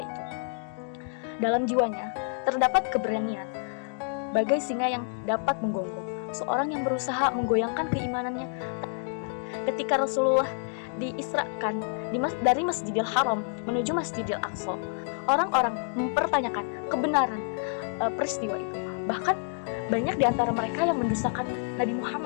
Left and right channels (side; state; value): right; silent; digital silence